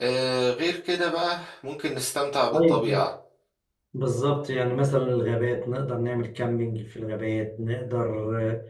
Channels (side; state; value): both; identical; correlation 1.00